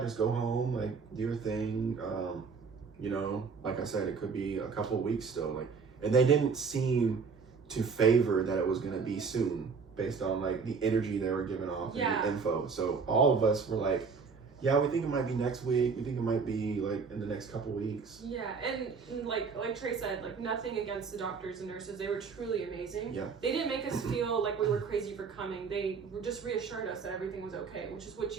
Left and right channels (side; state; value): left; quieter; 5.3 dB